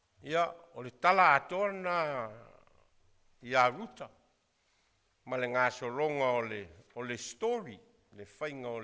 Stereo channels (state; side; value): identical; both; correlation 1.00